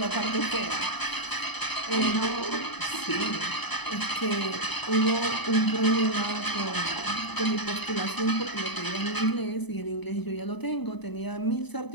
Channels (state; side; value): late; right; 0.99 ms